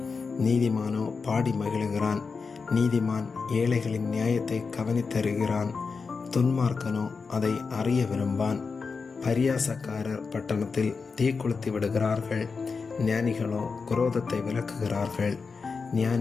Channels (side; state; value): right; quieter; 4.9 dB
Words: நீதிமானோ பாடி மகிழுகிறான். நீதிமான் ஏழைகளின் நியாயத்தை கவனித்தருகிறான், துன்மார்க்கனோ அதை அறிய விரும்பான். பரியாசக்காரர் பட்டணத்தில் தீக்குளுத்தி விடுகிறார்கள், ஞானிகளோ குரோதத்தை விலக்குகிறார்கள்.